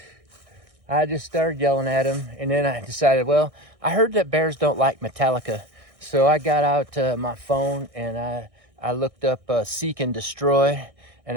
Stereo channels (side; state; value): left; late; 1.6 ms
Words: I just started yelling at him, and then I decided, well, I heard that bears don't like Metallica. So I got out my phone and I looked up Seek and Destroy,